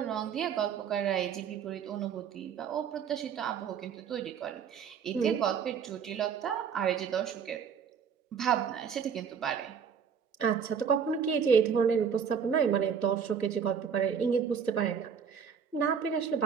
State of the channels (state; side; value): quieter; left; 7.2 dB